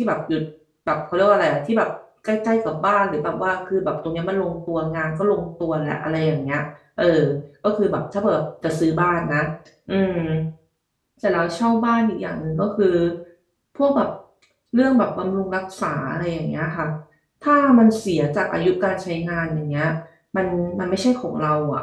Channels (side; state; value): both; identical; correlation 1.00